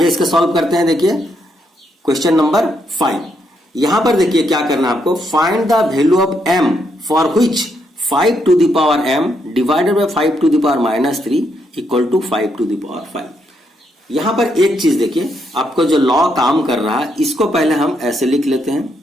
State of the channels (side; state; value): both; normal; correlation 0.77